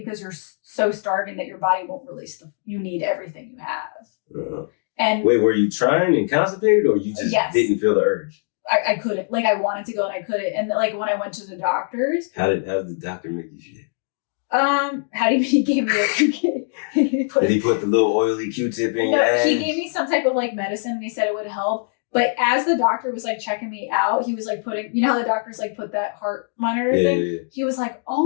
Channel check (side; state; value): right; silent; 64 dB below the other